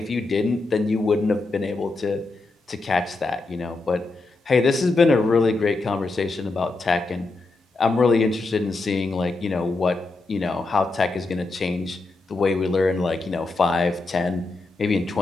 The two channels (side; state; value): right; quieter; 3.4 dB